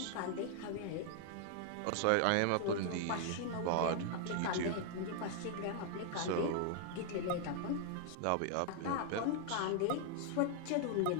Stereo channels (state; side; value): different; both; correlation 0.00